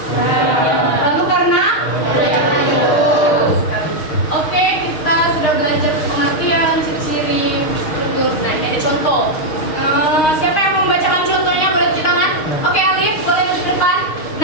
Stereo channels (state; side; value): late; right; 6.4 ms